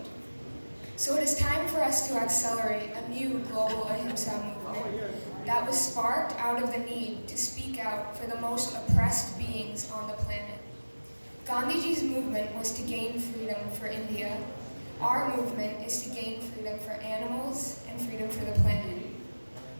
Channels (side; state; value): both; inverted; correlation -1.00